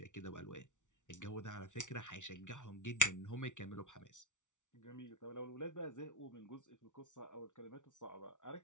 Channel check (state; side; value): late; right; 0.86 ms